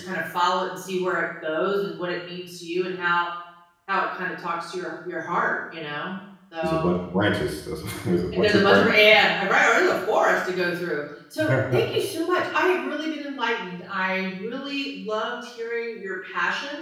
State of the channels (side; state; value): both; identical; correlation 1.00